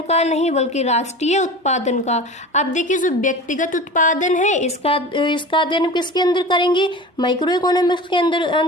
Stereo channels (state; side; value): normal; both; correlation 0.34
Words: का नहीं बल्कि राष्ट्रीय उत्पादन का। अब देखिए जो व्यक्तिगत उत्पादन है इसका अध्ययन किसके अंदर करेंगे, माइक्रो इकोनॉमिक्स के